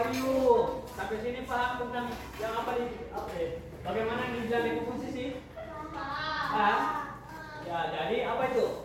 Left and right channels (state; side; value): identical; both; correlation 1.00